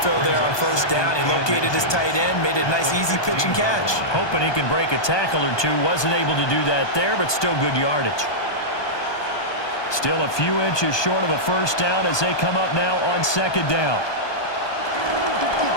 fill there on 1st down. He located his tight end, made it a nice, easy pitch and catch. Hoping he can break a tackle or two. Wasn't able to do that there, but still good yardage. Still a few inches short of a 1st down as they come up now on 2nd down.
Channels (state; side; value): late; right; 1.2 ms